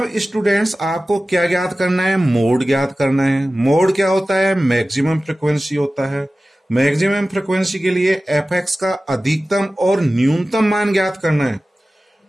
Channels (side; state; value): both; normal; correlation 0.96